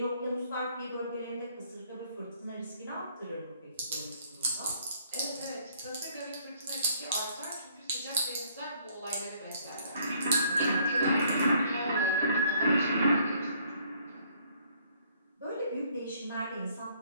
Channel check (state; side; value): inverted; both; correlation -0.63